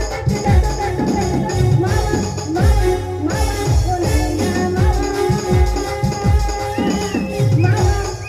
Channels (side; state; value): both; identical; correlation 1.00